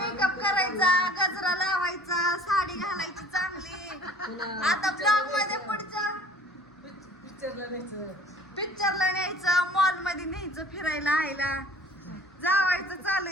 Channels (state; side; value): normal; both; correlation 0.49